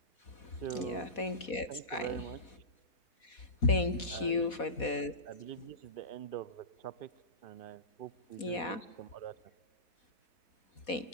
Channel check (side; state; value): right; late; 4.1 ms